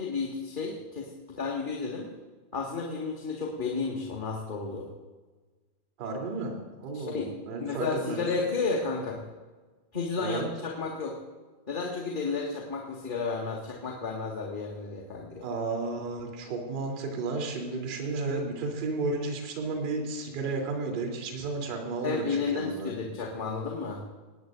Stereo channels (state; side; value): late; left; 2.4 ms